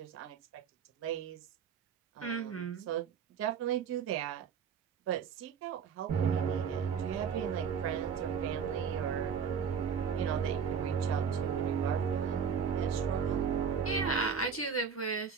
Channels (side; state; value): left; quieter; 6.8 dB